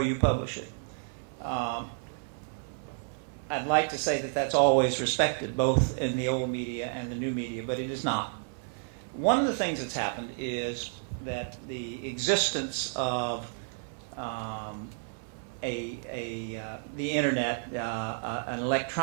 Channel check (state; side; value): silent; left; digital silence